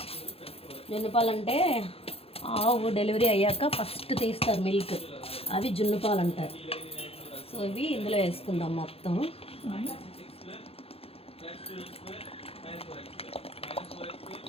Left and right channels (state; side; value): late; right; 0.28 ms